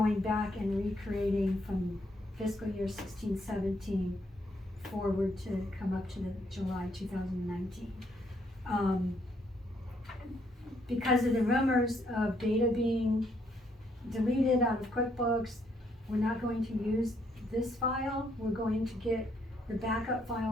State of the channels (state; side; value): normal; both; correlation 0.72